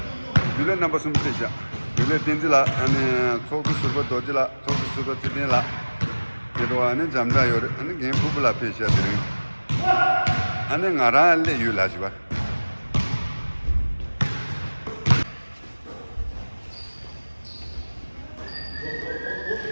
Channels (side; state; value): both; inverted; correlation -1.00